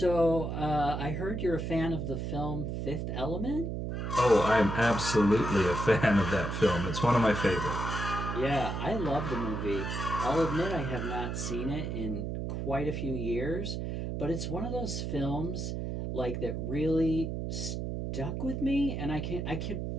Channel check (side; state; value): right; noise; hum, 3 dB below the sound